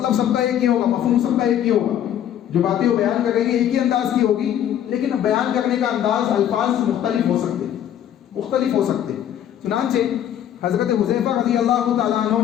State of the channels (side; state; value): right; quieter; 10.5 dB